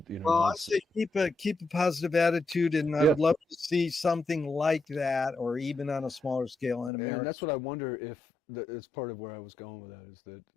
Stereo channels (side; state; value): right; drops out; at 6.9 s